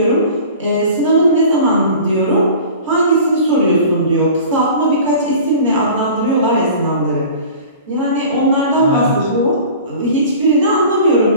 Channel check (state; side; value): inverted; both; correlation -0.41